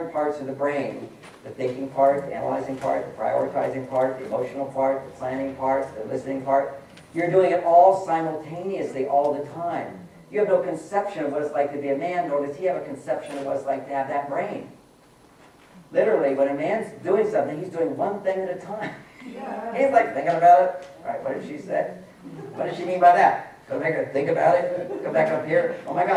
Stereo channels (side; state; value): both; identical; correlation 1.00